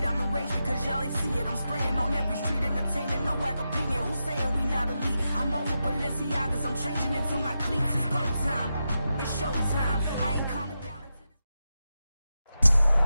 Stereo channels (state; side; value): inverted; both; correlation -0.89